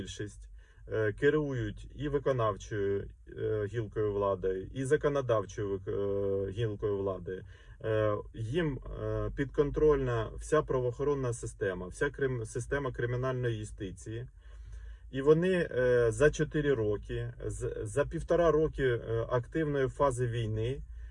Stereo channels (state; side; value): identical; both; correlation 1.00